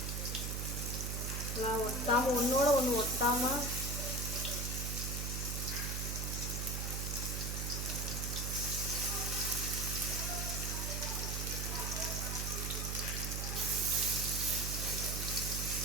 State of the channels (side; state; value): right; noise; hum, 2 dB below the sound